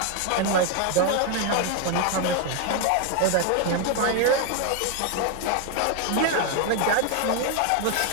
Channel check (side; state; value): both; different; correlation 0.01